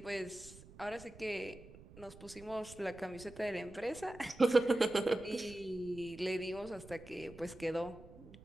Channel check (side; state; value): right; noise; rumble, 18 dB below the sound